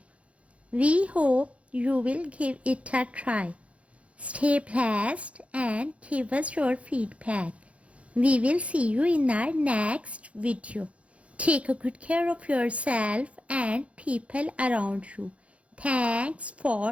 We hope you will give it a try. Stay blessed and give us your feedback. We will see you in our next video. Take a good care of yourself and people around you. Thanks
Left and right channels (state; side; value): late; left; 0.063 ms